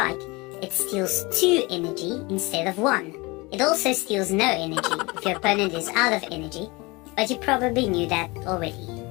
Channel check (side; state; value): right; quieter; 24.8 dB